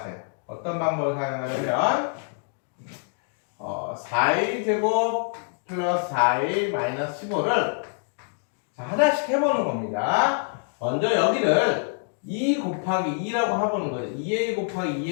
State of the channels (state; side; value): silent; right; digital silence